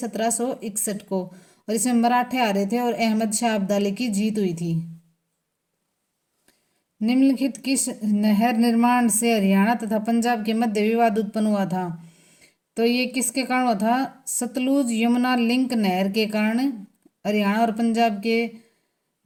को। और इसमें मराठे आ रहे थे और अहमद शाह अब्दाली की जीत हुई थी। निम्नलिखित किस नहर निर्माण से हरियाणा तथा पंजाब के मध्य विवाद उत्पन्न हुआ था? तो ये किसके कारण हुआ था? सतलुज यमुना लिंक नहर के कारण हरियाणा और पंजाब के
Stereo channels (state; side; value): identical; both; correlation 1.00